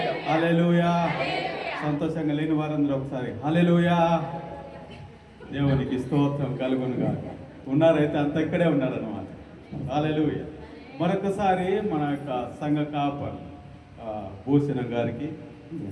హల్లెలూయా. సంతోషంగా లేని వారందరూ ఒకసారి హల్లెలూయా. దేవునికి స్తోత్రం కలుగునుగా. ఉన్నారైతే అంత ఇక్కడే ఉన్నారన్నమాట. హల్లెలూయా. మరొకసారి మన యొక్క సంఘ కాపర్ భూషణం గారికి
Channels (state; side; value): identical; both; correlation 1.00